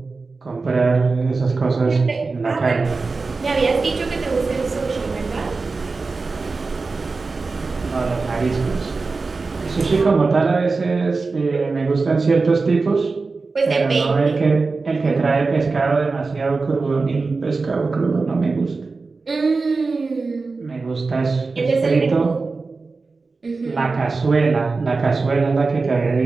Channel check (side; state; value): left; quieter; 4.0 dB